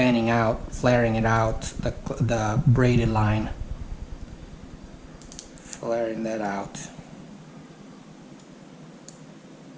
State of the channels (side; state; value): both; identical; correlation 1.00